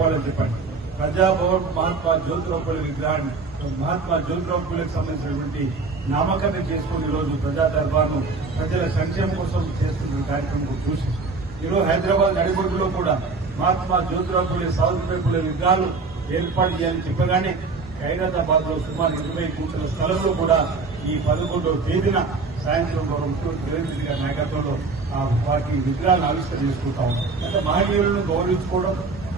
చెప్పండి. ప్రజాభవన్ మహాత్మా జ్యోతిరావు ఫులే విగ్రహాన్ని మహాత్మా జ్యోతిరావు ఫులేకి సంబంధించినటువంటి నామకరణం చేసుకుని ఈరోజు ప్రజా దర్బార్ను ప్రజల సంక్షేమం కోసం చేస్తున్న కార్యక్రమం చూసి ఈరోజు హైదరాబాద్ నడిబొడ్డులో కూడా మహాత్మా జ్యోతిరావు ఫులే సావిత్రిబాయి ఫులే విగ్రహాలు ఏర్పాటు చేయాలని చెప్పగానే ఖైరతాబాద్ లో సుమారు 20 కోట్ల స్థలంలో కూడా ఈ 11వ తేదీన సాయంత్రం ముఖ్యమంత్రి రేవంత్ రెడ్డి గారి నాయకత్వంలో వాటి విగ్రహాలను ఆవిష్కరణ చేసుకుంటా ఉన్నాం. అంటే మహనీయులను గౌరవించుకోవడం,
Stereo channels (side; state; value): left; quieter; 4.1 dB